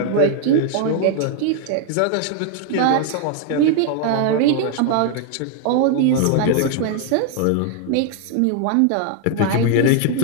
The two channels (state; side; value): different; both; correlation 0.00